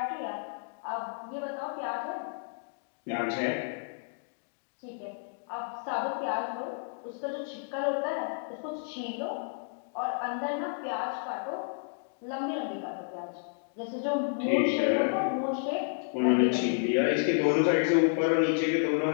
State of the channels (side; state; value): right; silent; digital silence